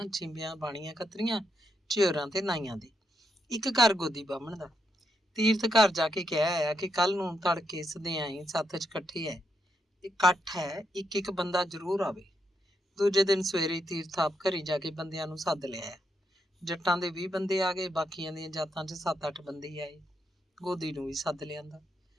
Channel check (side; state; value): both; normal; correlation 0.81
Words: ਛਿੰਬੀਆਂ, ਬਾਣੀਆਂ, ਕਤਰੀਆਂ, ਝਿਉਰਾਂ ਤੇ ਨਾਈਆਂ ਦੇ, ਇੱਕ ਘਰ ਗੋਦੀ ਬਾਹਮਣ ਦਾ। ਤੀਰਥ ਘਰ ਜਾ ਕੇ ਕਹਿ ਆਇਆ ਕਿ ਕੱਲ ਨੂੰ ਤੜਕੇ ਸਦਿਆਈ ਸੱਥ 'ਚ ਇਕੱਠ ਹੈ, ਇੱਕ ਬੰਦਾ ਜ਼ਰੂਰ ਆਵੇ। ਦੂਜੇ ਦਿਨ ਸਵੇਰੇ ਤੀਰਥ ਆਪ ਘਰੀ ਜਾ ਕੇ ਬੰਦਿਆਂ ਨੂੰ ਸੱਦ ਲਿਆਇਆ। ਜੱਟਾਂ ਦੇ 20 ਬੰਦੇ ਆ ਗਏ, ਬਾਕੀਆਂ ਦੀਆਂ ਜਾਤਾਂ 'ਚ 7-8 ਬੰਦੇ ਆਏ। ਗੋਦੀ ਨੂੰ ਵੀ ਸੱਦ ਲਿਆਂਦਾ।